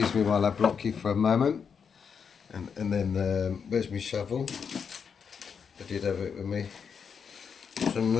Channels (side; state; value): right; quieter; 6.6 dB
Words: me while I block you for a moment. And then, where's my shovel? I did have it with me